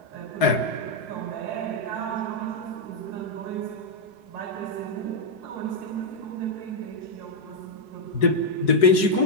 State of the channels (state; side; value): late; right; 4.7 ms